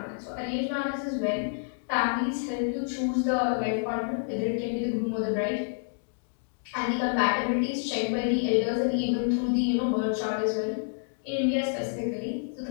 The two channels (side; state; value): right; silent; digital silence